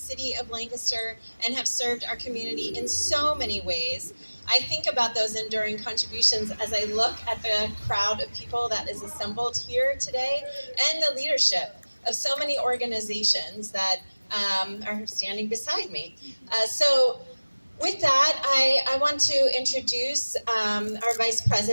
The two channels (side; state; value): both; inverted; correlation -1.00